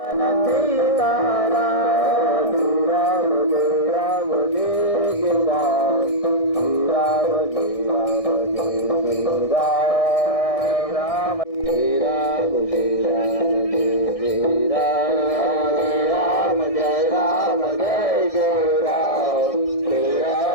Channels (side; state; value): right; late; 1.6 ms